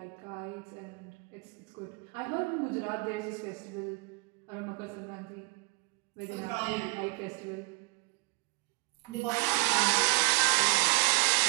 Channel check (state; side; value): quieter; left; 27.1 dB